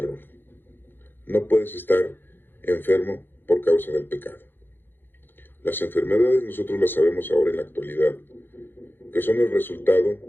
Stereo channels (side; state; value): right; late; 0.099 ms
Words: No puedes estar enfermo por causa del pecado. Las enfermedades nosotros las sabemos ahora en la actualidad, que son el resultado